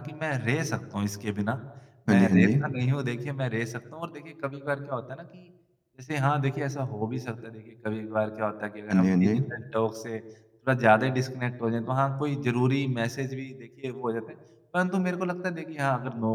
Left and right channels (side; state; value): both; identical; correlation 1.00